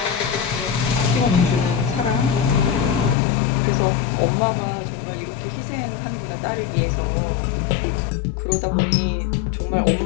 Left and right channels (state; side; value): drops out; right; at 3.2 s